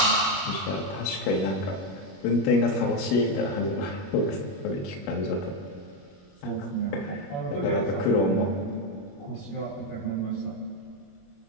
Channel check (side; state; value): right; late; 21 ms